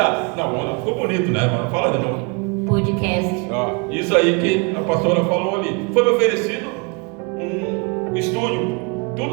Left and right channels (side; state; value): left; quieter; 32.3 dB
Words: não, ficou bonito, né? Fala de novo. Podcast. Ó, isso aí que a pastora falou ali. Foi me oferecido um estúdio.